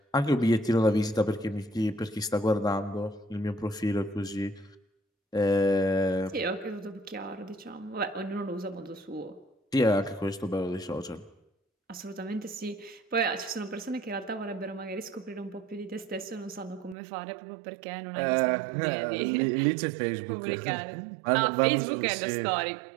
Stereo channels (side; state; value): left; drops out; at 16.9 s